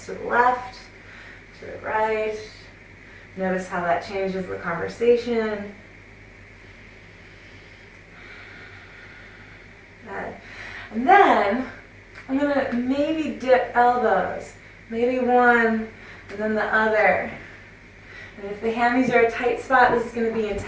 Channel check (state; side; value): identical; both; correlation 1.00